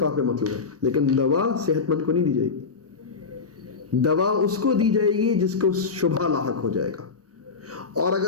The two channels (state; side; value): quieter; right; 4.9 dB